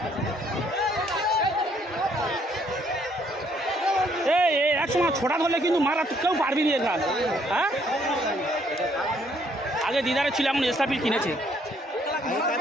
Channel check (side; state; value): both; normal; correlation 0.67